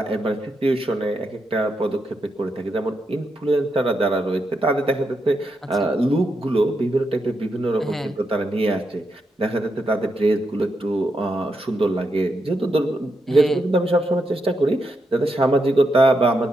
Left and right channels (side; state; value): both; normal; correlation 0.83